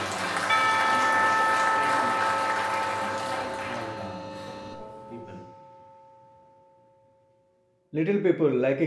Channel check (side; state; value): both; identical; correlation 1.00